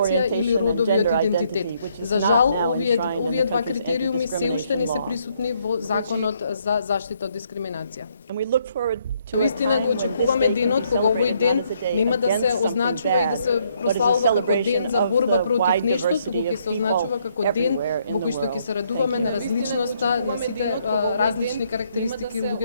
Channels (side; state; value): both; inverted; correlation -0.71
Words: или родовиот идентитет. За жал, овие два критериуми се уште не се присутни во Законот за заштита од дискриминација. Вистина го очекуваме денот кога овој ден нема да се означува и да се прославува како ден за борба против нешто, туку ќе се означува како ден во кој што ќе се радуваме на различноста, на сите различни карактеристики